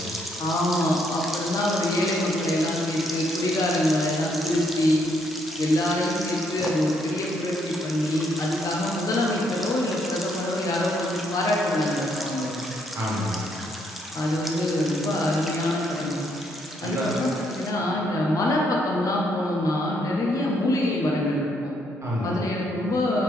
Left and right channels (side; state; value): both; normal; correlation 0.73